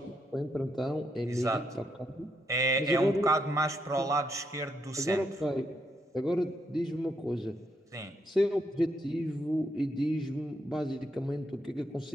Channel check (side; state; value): both; normal; correlation 0.78